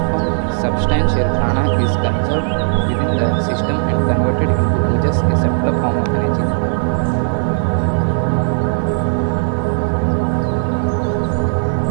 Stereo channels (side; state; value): left; silent; digital silence